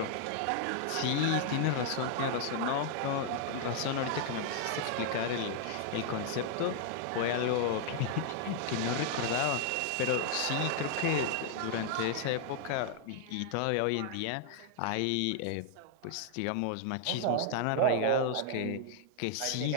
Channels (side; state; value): both; different; correlation 0.00